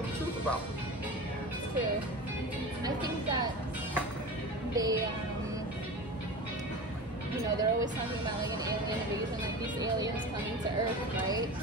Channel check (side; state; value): both; normal; correlation 0.30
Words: the truth about them. It's true. I think that they, they're always talking about like an alien invasion, like these aliens coming to Earth, right?